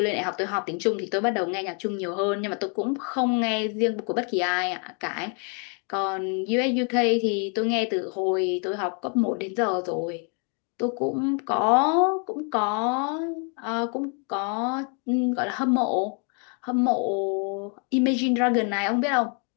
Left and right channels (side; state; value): right; quieter; 39.2 dB